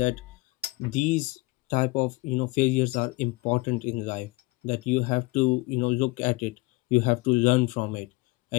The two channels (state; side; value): quieter; right; 23.3 dB